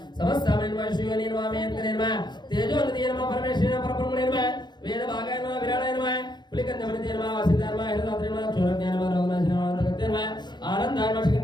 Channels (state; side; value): late; right; 0.21 ms